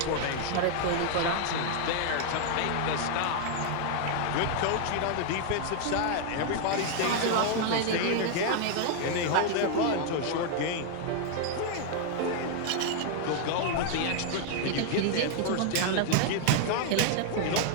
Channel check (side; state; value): both; different; correlation 0.00